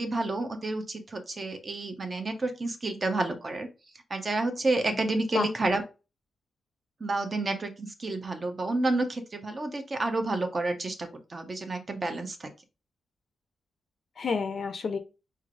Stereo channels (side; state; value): both; normal; correlation 0.88